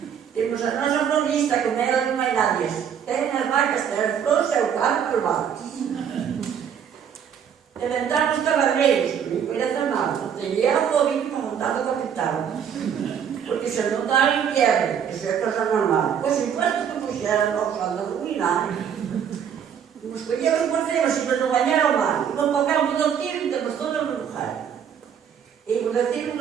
Temos a nossa florista, com ela não vai nada. Tem as vacas, tem as flores, é o carro, os vacas. Inventamos cavalreiros, me conhece mal. Tem eu o ouvido para montar o capital. Porque se não está em quebra, isso é coisa normal. Pois enquanto que puxeram nós a dominar, nos escolhemos por cima, se não banhar ao mar. E vamos para o campo do tiro e temos todas as lugares. E por aqui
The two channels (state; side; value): quieter; left; 8.2 dB